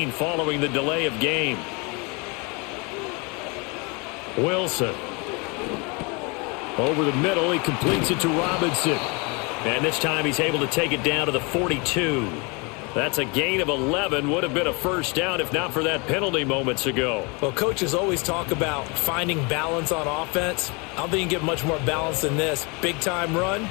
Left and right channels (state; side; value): quieter; right; 29.8 dB